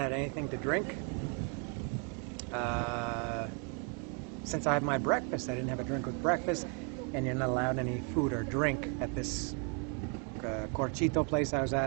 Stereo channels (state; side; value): quieter; left; 37.3 dB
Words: anything to drink since I had my breakfast. I didn't have a drink with breakfast, and you're not allowed any food or drink at this Corchito place I was